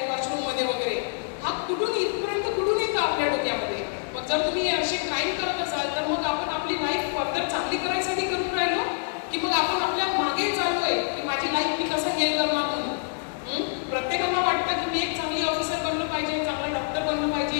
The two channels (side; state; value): right; silent; digital silence